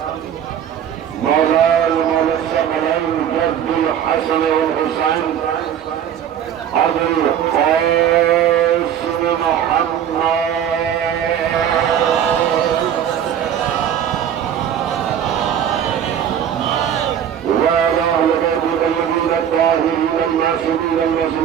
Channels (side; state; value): left; quieter; 9.4 dB